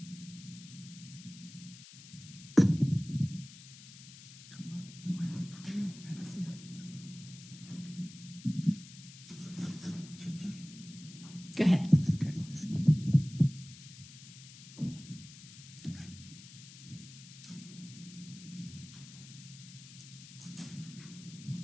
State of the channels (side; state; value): left; noise; hiss, 17 dB below the sound